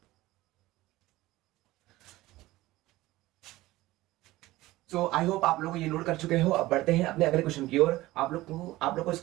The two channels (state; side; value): quieter; left; 17.9 dB